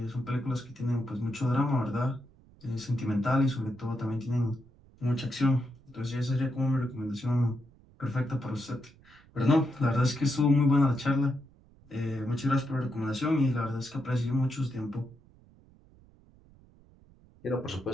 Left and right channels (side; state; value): right; noise; rumble, 27 dB below the sound